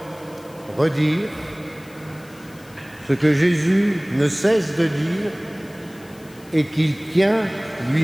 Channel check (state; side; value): noise; left; hiss, 25 dB below the sound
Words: redire ce que Jésus ne cesse de dire et qu'il tient